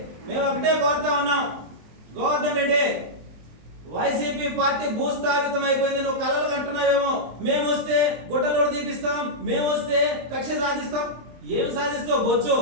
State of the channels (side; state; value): left; late; 23 ms